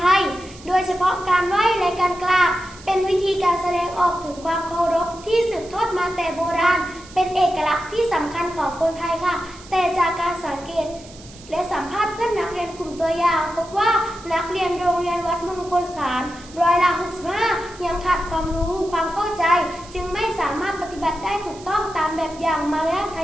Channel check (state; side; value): noise; right; hiss, 20 dB below the sound